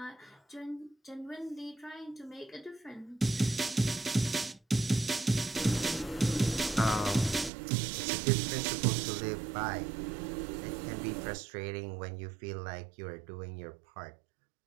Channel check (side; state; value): left; drops out; at 7.5 s